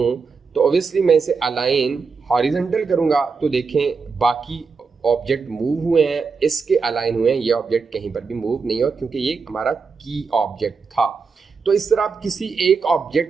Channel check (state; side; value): quieter; left; 5.0 dB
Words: तो ऑब्वियसली मैं इसे अलाइन हॉरिजॉन्टल करूँगा तो देखें बाकी ऑब्जेक्ट मूव हुए हैं, इसके अलाइन हुए हैं, ये ऑब्जेक्ट कहीं पर भी मूव नहीं हुआ क्योंकि ये हमारा की ऑब्जेक्ट था। तो इस तरह आप किसी एक